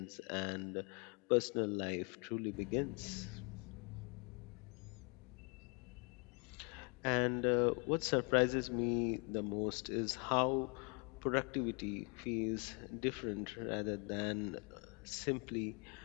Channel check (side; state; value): right; quieter; 34.4 dB